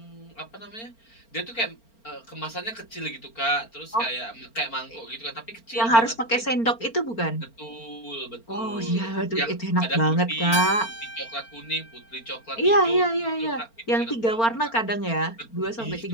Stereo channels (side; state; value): right; late; 4.4 ms